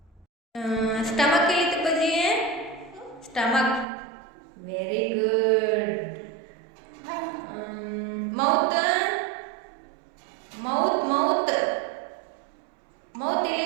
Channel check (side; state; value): left; drops out; at 3.9 s